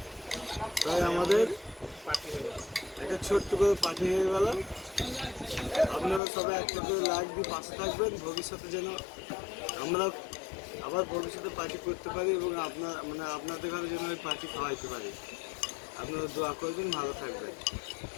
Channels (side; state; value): right; drops out; at 6.2 s